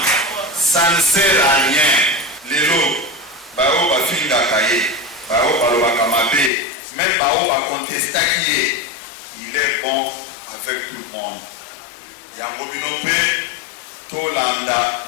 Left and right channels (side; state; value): right; drops out; at 6.5 s